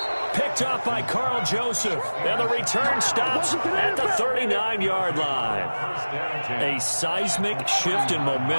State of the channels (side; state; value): both; inverted; correlation -1.00